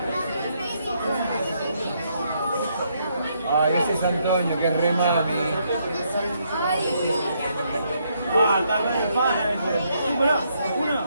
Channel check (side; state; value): both; inverted; correlation -0.74